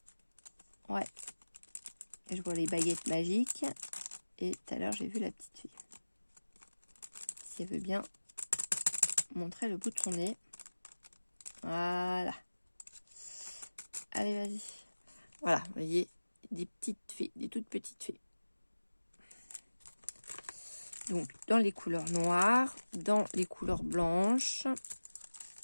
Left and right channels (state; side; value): inverted; both; correlation -1.00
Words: Ouais. Je vois les baguettes magiques. Et tout à l'heure, j'ai vu la petite fille. Si elle veut bien montrer le bout de son nez. Voilà. Allez, vas-y. Voilà, vous voyez, des petites fées, des toutes petites fées. Donc, dans les couleurs noires, dans les couleurs blanches.